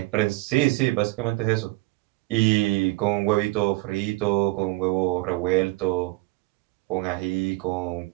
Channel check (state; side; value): quieter; left; 22.0 dB